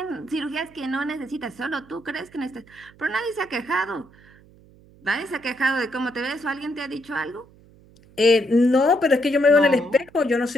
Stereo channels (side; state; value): right; noise; hum, 26 dB below the sound